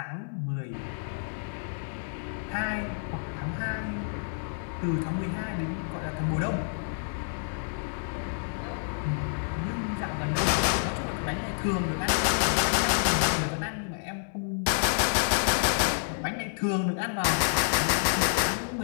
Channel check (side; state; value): right; silent; 59 dB below the other